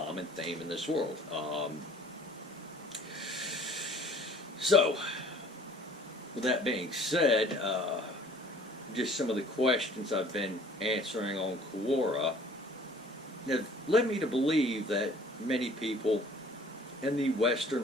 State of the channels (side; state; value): both; normal; correlation 0.52